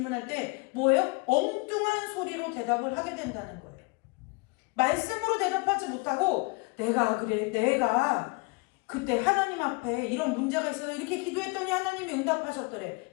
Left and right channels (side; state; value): right; quieter; 28.8 dB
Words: 때 뭐예요? 엉뚱한 소리로 대답을 하게 된다는 거예요. 말씀으로 대답하지 못하고 내가 그때 하나님 앞에 이런 문제가 있어서 이렇게 기도했더니 하나님이 응답하셨더래.